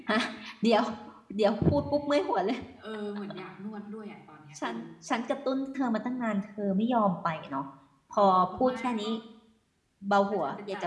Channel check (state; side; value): identical; both; correlation 1.00